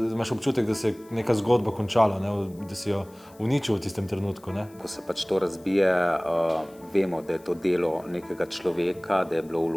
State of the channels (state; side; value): noise; left; hiss, 27 dB below the sound